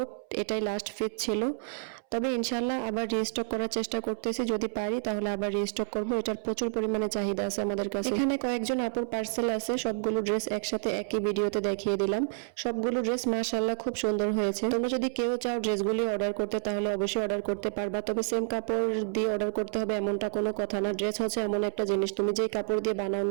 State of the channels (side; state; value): left; silent; 58 dB below the other